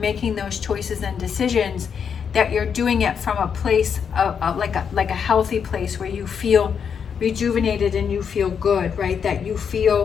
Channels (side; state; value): right; quieter; 7.1 dB